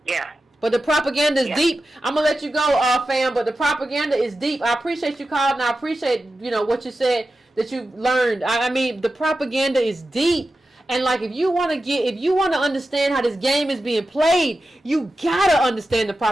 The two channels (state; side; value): normal; both; correlation 0.92